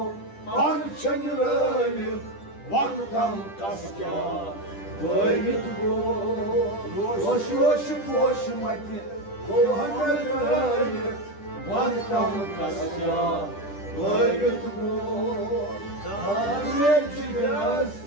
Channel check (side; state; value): right; late; 10 ms